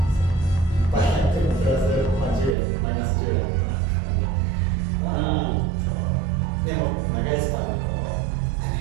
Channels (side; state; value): left; drops out; at 2.6 s